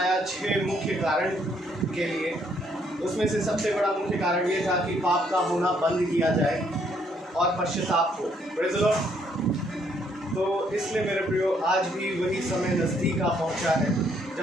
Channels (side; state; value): both; normal; correlation 0.69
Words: 6 मुख्य कारण के लिए। उसमें से सबसे बड़ा मुख्य कारण ये था कि पाप का होना बंद किया जाए और पश्चाताप हो। Praise the Lord. तो इसलिए मेरे प्रियो, आज भी वही समय नज़दीक आ पहुँचा है